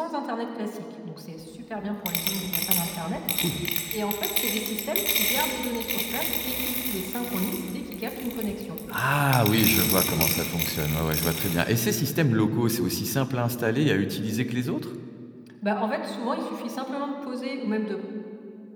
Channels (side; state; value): both; identical; correlation 1.00